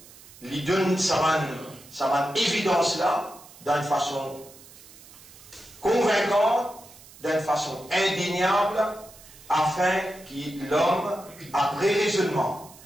lui donne sa évidence là d'une façon convaincante, d'une façon indéniable, afin que l'homme, après raisonnement,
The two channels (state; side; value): noise; right; hiss, 21 dB below the sound